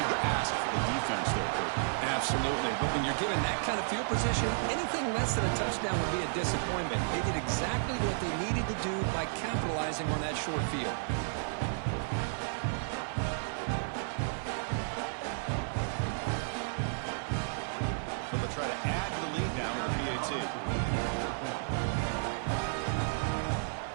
ask for the defense there, Kurt. Absolutely. But when you're given that kind of field position, anything less than a touchdown would be a disappointment. They did exactly what they needed to do by capitalizing on that short field. So they'll try to add to the lead now with a PAT.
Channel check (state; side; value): silent; left; 56 dB below the other